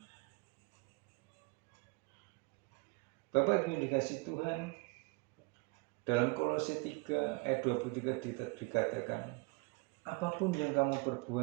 Bapak Ibu yang dikasihi Tuhan, dalam Kolose 3 ayat 23 dikatakan, apapun yang kamu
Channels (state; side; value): quieter; left; 29.3 dB